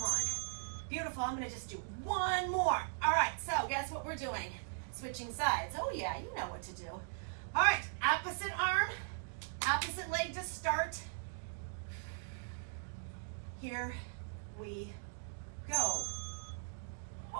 on. Beautiful. I'm going to just do one more. All right. So guess what we're doing? Switching sides. Oh, yeah. You know what to do. All right. Opposite arm. Opposite leg to start. Here we go.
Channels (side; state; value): left; silent; digital silence